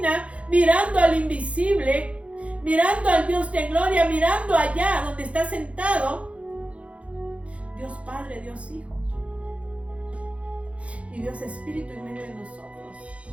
mirando al invisible, mirando al Dios de gloria, mirando allá donde está sentado Dios Padre, Dios Hijo y Dios Espíritu en medio de nosotros.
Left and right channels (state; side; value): late; left; 0.063 ms